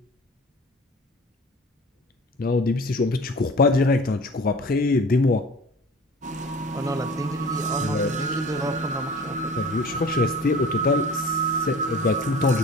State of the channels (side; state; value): both; normal; correlation 0.42